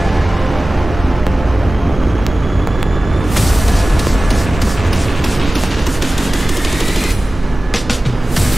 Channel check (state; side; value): normal; both; correlation 0.97